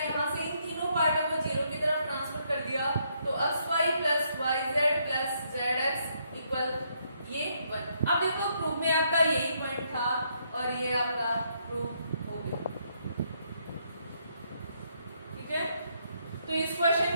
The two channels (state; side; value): inverted; both; correlation -0.74